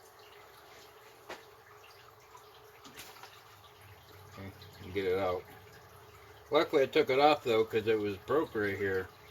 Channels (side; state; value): both; identical; correlation 1.00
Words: Okay, and get it out. Luckily I took it off though because it was broke right here.